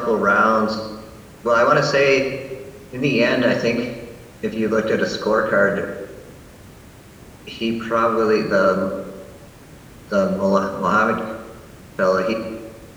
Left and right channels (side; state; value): both; identical; correlation 1.00